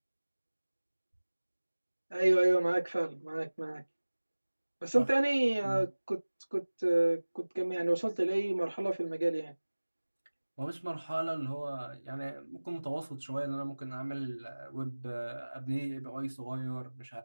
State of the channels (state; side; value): inverted; both; correlation -1.00